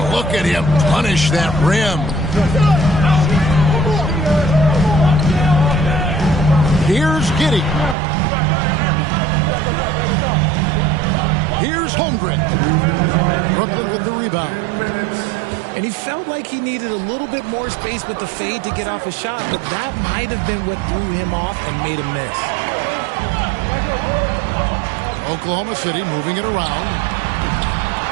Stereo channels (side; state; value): left; drops out; at 8.0 s